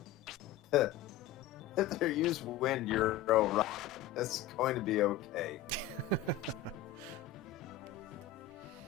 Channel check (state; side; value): quieter; right; 9.9 dB